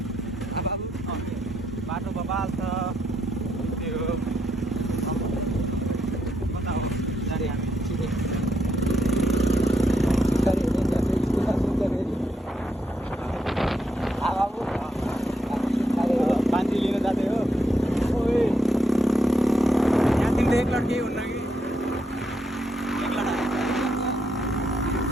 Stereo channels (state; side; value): normal; both; correlation 0.79